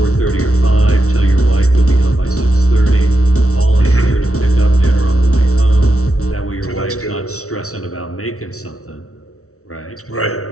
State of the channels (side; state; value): right; late; 0.64 ms